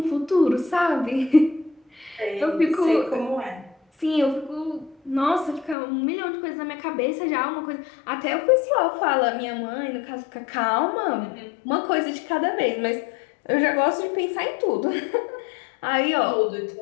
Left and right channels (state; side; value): drops out; right; at 5.8 s